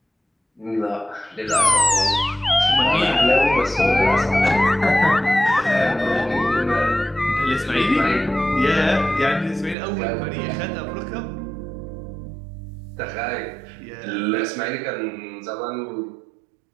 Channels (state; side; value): drops out; left; at 9.8 s